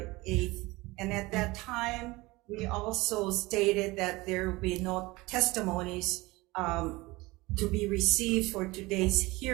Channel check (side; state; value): left; quieter; 21.6 dB